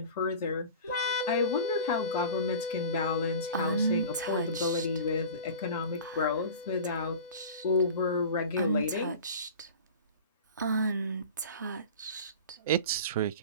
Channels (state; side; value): inverted; both; correlation -0.37